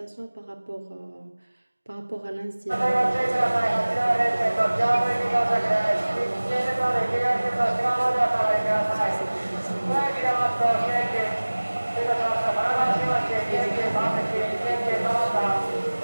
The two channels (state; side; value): inverted; both; correlation -1.00